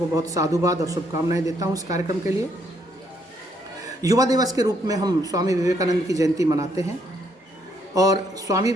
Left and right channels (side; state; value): both; normal; correlation 0.71